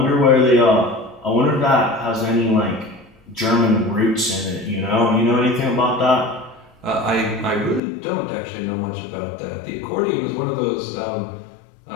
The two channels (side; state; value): right; drops out; at 7.8 s